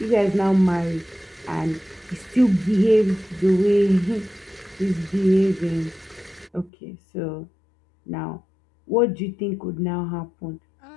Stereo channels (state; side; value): drops out; right; at 6.7 s